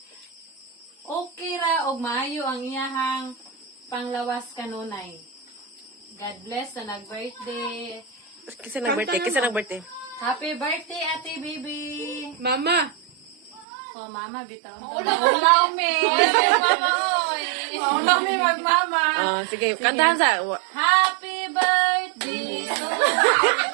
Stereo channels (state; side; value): drops out; left; at 13.7 s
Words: okay ra og maayo ang iyahang panglawas kanunay. God bless sa nag-birthday. Kisa nag-birthday? Happy birthday, Ate Baby! Mama! Oh, Mama, bitaw. Mami! Mami, mag-mama! Sige, kantahan sa... Happy birthday to